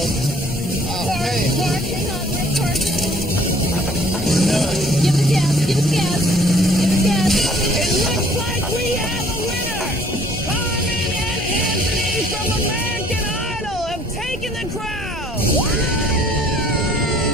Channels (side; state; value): both; normal; correlation 0.58